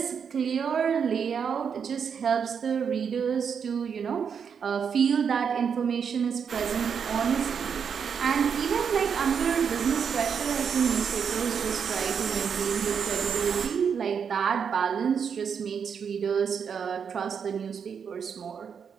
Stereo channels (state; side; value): quieter; left; 6.9 dB